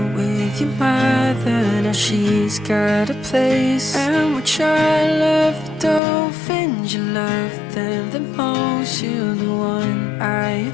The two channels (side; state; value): right; drops out; at 6.0 s